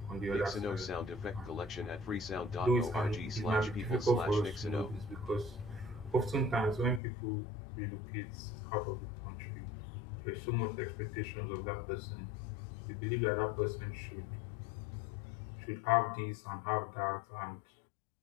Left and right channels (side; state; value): right; drops out; at 7.0 s